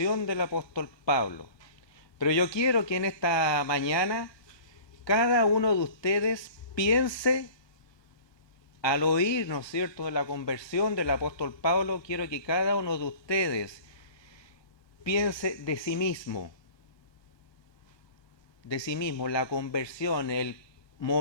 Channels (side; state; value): right; late; 1.3 ms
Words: del apóstol Pablo. Pero yo quiero que en esta mañana cada uno de ustedes piense, al oír, ¿no es cierto?, de la conversión del apóstol Pablo, quiero que cada uno de ustedes piense de sí mismo, la conversión, el